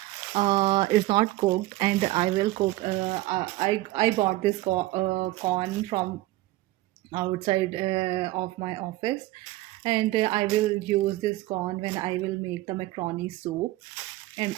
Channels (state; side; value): quieter; left; 17.5 dB